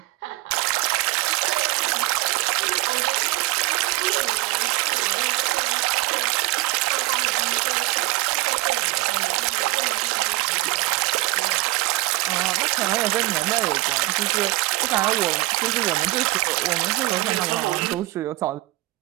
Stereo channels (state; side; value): quieter; left; 19.1 dB